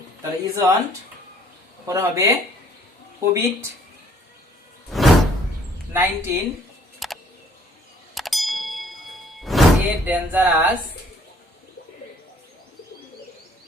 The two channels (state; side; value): normal; both; correlation 0.60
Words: তাহলে ইজন্ট, পরে হবে কোভিড-19 এ ডেঞ্জারাস